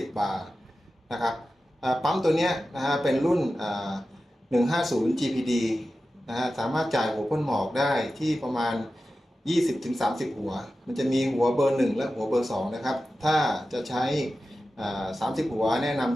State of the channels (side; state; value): both; normal; correlation 0.94